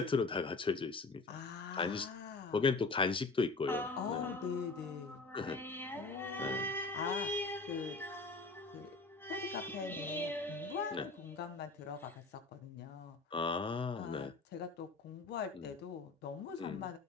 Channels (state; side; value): quieter; right; 3.8 dB